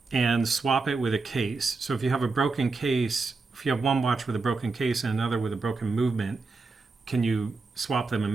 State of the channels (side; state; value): left; quieter; 4.0 dB